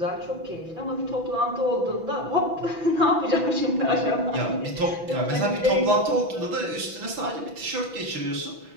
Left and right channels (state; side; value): late; left; 6.0 ms